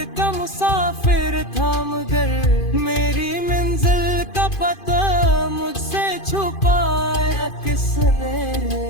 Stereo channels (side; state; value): right; late; 2.5 ms